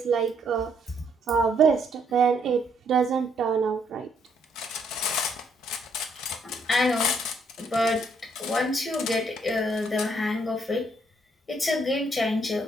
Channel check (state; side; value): normal; both; correlation 0.71